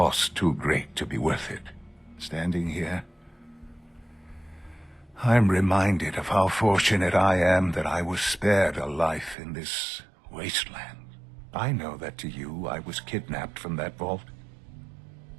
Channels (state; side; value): drops out; left; at 9.3 s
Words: too great to be worth it. Standing here, I'm reminded of how fortunate I am that I was spared a life in this wasteland. I know that to you, I was kidnapped from that vault.